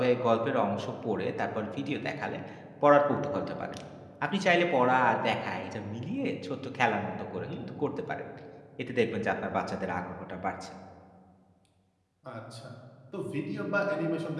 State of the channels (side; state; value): both; identical; correlation 1.00